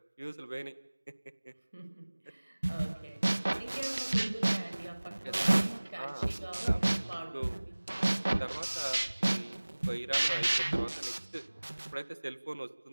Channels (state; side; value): inverted; both; correlation -1.00